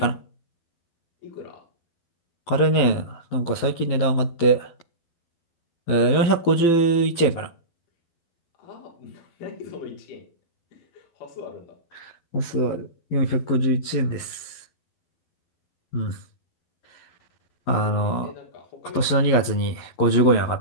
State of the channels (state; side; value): late; right; 12 ms